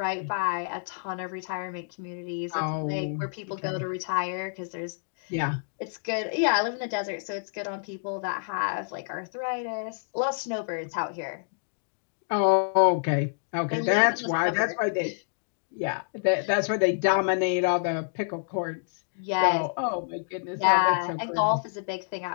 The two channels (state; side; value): silent; right; digital silence